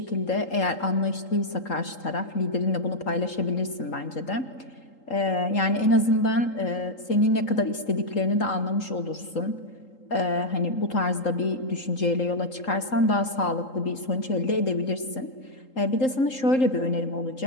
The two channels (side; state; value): right; late; 3.8 ms